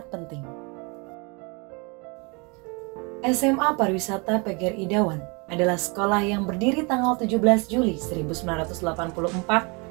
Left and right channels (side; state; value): left; quieter; 30.8 dB